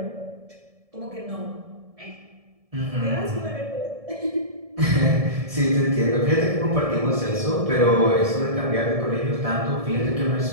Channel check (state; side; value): late; left; 1.7 ms